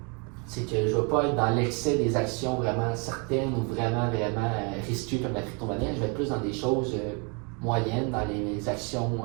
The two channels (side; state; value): left; quieter; 33.8 dB